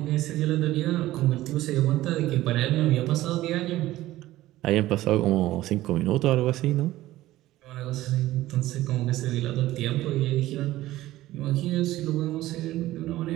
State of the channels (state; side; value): quieter; left; 15.9 dB